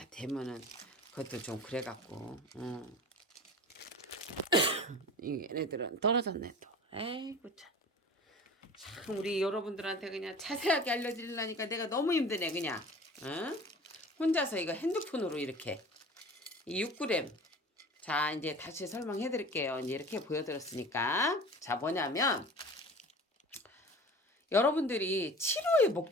대면은 그것도 좀 그래갖고, 얘네들은 떨어졌네 또. 에이구 참 우리 여러분들한테 그냥 자세하게 알려드리려니까 내가 너무 힘드네 그냥. 혼자서 이거 핸드폰으로 이렇게 이 6g. 자 이제 다시 설명해 드릴게요. 이제 이렇게 보여드렸으니까. 자 뭐냐면 여러분들이 치료의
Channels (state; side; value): normal; both; correlation 0.39